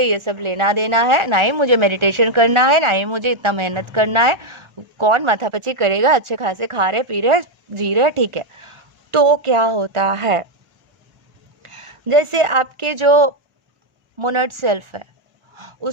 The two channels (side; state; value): left; late; 1.4 ms